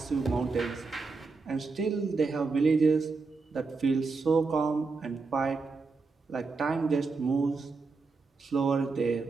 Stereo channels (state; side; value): quieter; left; 4.3 dB